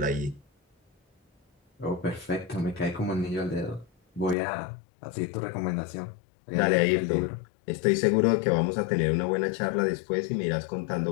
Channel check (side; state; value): right; drops out; at 4.4 s